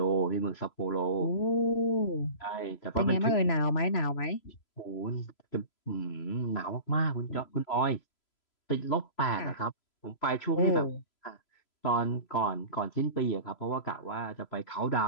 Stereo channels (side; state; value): right; late; 3.0 ms